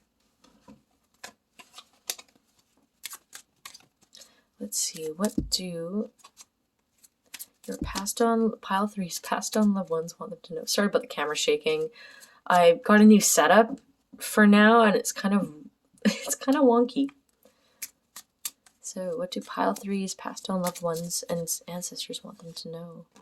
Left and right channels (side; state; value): both; identical; correlation 1.00